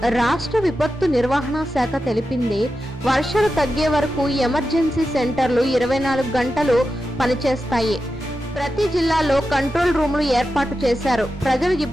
రాష్ట్ర విపత్తు నిర్వహణ శాఖ తెలిపింది, వర్షాలు తగ్గే వరకు ఎమర్జెన్సీ సెంటర్లు 24 గంటలు పనిచేస్తాయి. ప్రతి జిల్లాలో కంట్రోల్ రూములు ఏర్పాటు చేశారు. ప్రజలు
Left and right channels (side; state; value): both; normal; correlation 0.90